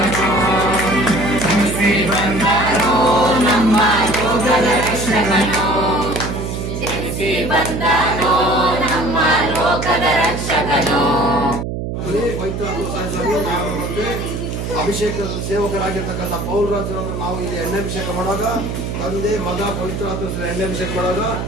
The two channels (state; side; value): noise; right; hum, 4 dB below the sound